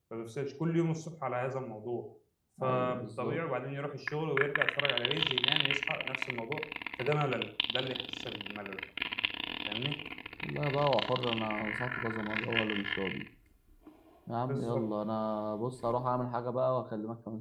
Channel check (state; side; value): identical; both; correlation 1.00